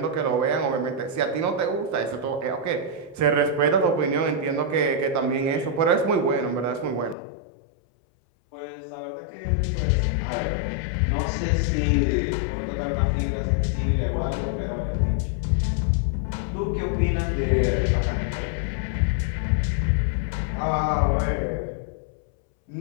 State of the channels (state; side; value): drops out; right; at 7.2 s